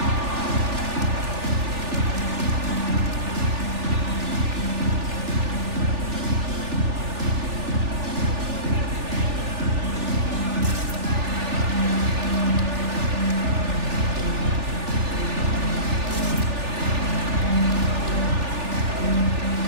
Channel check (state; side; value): late; left; 3.4 ms